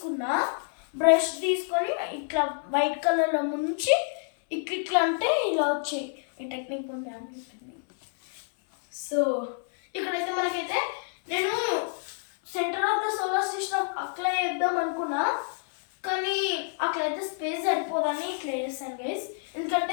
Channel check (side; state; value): right; silent; 59 dB below the other